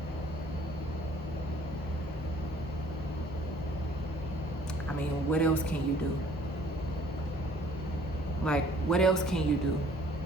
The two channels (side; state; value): both; normal; correlation 0.57